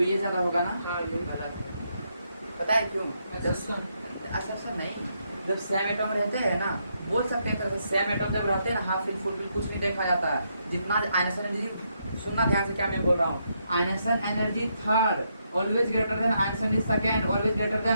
ये ज्यादा होगा ना? हाँ, ये। गलत है। पता है क्यों? अच्छा नहीं, जब सेम एटम रहते हैं ना, बोल सकते हैं तो सेम एटम जब रहते हैं ना, हाफ फील्ड फुल फील्ड कुछ नहीं देखा जाता है। जितना आयनाइजेशन एनर्जी, सुनना ध्यान से क्या मैं बोल रहा हूँ। Ionisation energy third always greater than ionisation energy second, always greater than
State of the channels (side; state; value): both; inverted; correlation -0.78